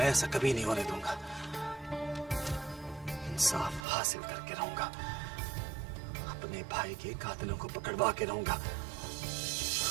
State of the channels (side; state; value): left; drops out; at 3.9 s